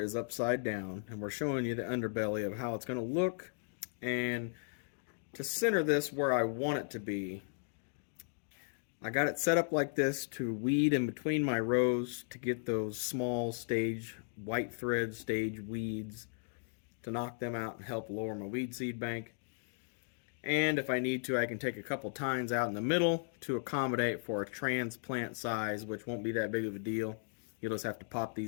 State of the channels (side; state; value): right; silent; digital silence